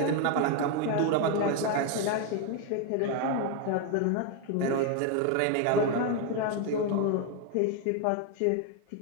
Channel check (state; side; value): different; both; correlation 0.01